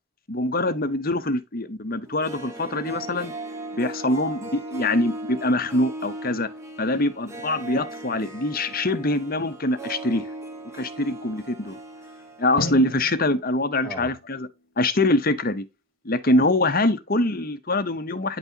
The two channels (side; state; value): both; normal; correlation 0.27